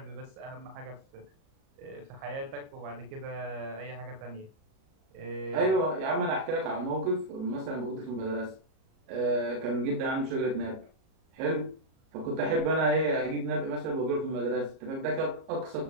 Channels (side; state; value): left; late; 37 ms